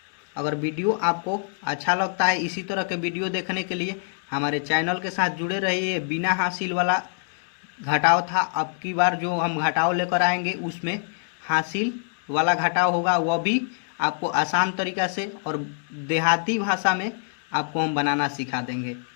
अगर वीडियो आपको अच्छा लगता है इसी तरह के वीडियो देखने के लिए हमारे चैनल के साथ जुड़े रहिए। बिना हासिल वाला घटाव था, अब की बार जो हम घटाव लेकर आएंगे उसमें हासिल वाला घटाव होगा, वह भी आपको आसान तरीक़ा से और देहाती भाषा में आपको हम बनाना सिखा देंगे।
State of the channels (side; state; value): right; silent; digital silence